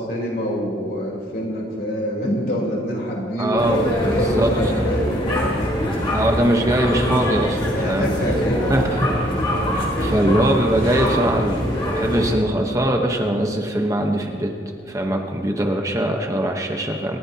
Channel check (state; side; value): normal; both; correlation 0.66